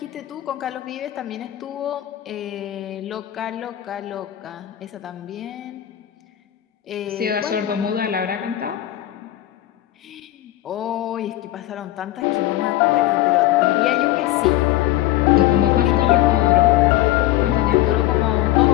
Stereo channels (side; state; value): right; quieter; 14.8 dB